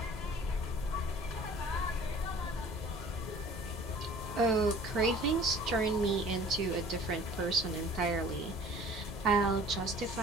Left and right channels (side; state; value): both; normal; correlation 0.48